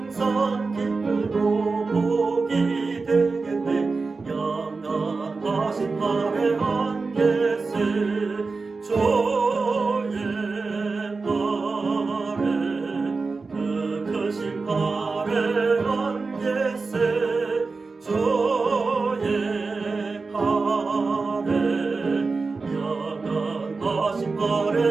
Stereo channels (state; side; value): quieter; left; 4.1 dB